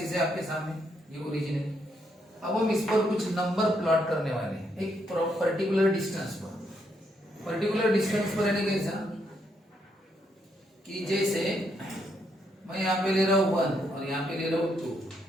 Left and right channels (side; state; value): both; normal; correlation 0.76